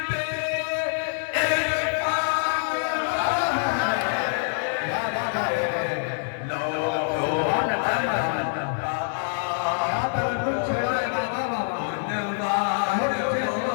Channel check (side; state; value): right; silent; 61 dB below the other